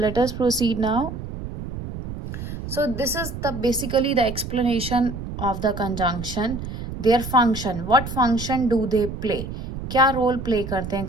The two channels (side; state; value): right; noise; rumble, 8 dB below the sound